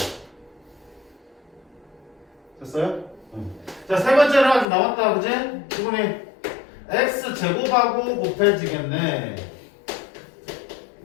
됐어요? 자, 세 번째는 아직 남았다 그지? 지분이 x 제곱하고 곱해지겠네.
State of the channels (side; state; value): right; drops out; at 4.7 s